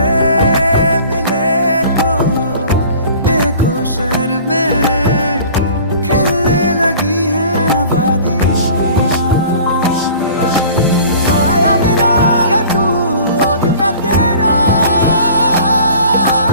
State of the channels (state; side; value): inverted; both; correlation -0.46